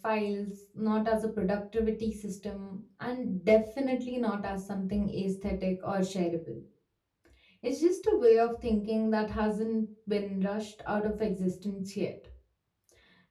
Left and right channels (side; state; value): both; identical; correlation 1.00